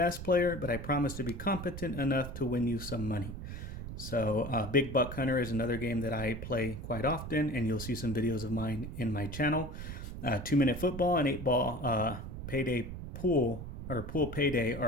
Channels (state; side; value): noise; right; rumble, 8 dB below the sound